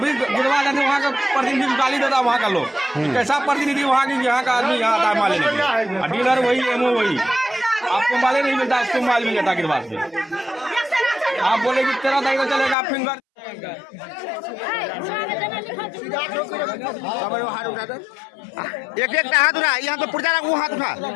गुड़वा जाते वहाँ का प्रतिनिधि गाली देता है वहाँ का लोग, कैसा प्रतिनिधि वहाँ की, यहाँ का आदमी यहाँ आता है माल लेने के लिए, डीलर वही एमओ वही, आपको माल नहीं मिलता, इसको माल मिल जाता गिरवा से। आप बोले कि 13 तारीख को चलेगा, आप फिंगर एक एक हाथ उठा, यहाँ तो पुर्जा वो हाथ उठा।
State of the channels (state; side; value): drops out; right; at 12.8 s